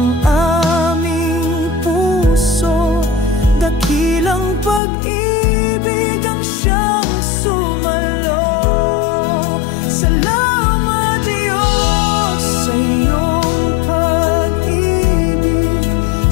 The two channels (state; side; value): drops out; right; at 4.8 s